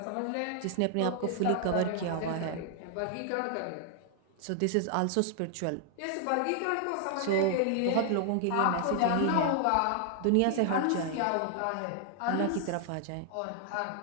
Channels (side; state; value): both; different; correlation 0.00